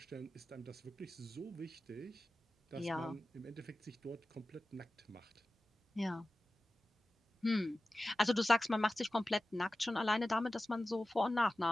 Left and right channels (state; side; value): normal; both; correlation 0.95